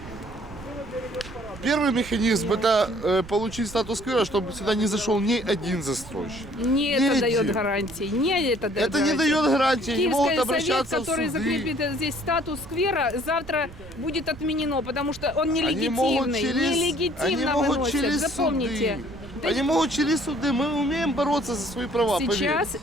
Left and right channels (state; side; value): noise; right; rumble, 17 dB below the sound